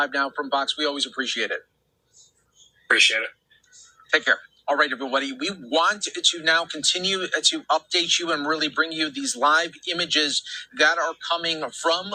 Now from Fox. We always appreciate it. Appreciate it. Take care. All right, everybody. We want to now continue to update you and really bring you these live images that are coming from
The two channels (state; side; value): identical; both; correlation 1.00